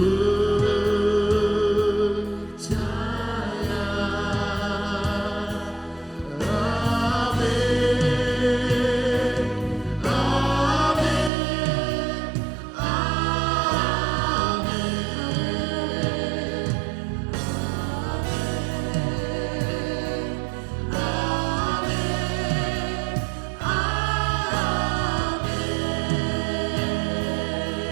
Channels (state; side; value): drops out; left; at 11.3 s